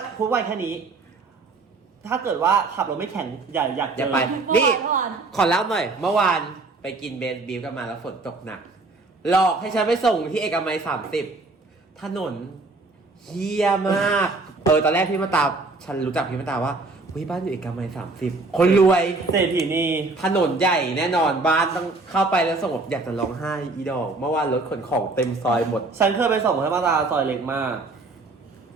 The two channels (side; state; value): left; quieter; 3.5 dB